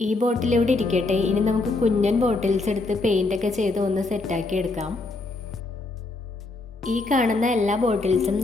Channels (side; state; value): right; quieter; 3.3 dB